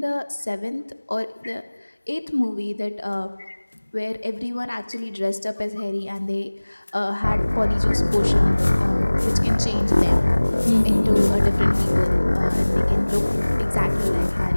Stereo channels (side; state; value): both; inverted; correlation -1.00